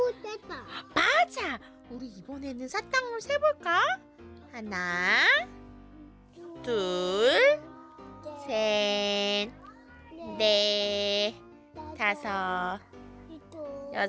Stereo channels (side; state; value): both; identical; correlation 1.00